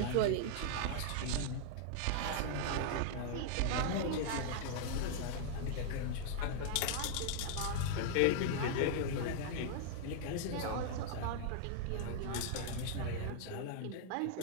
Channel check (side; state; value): both; different; correlation 0.00